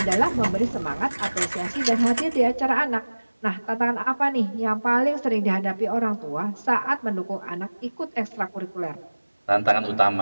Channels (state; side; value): inverted; both; correlation -1.00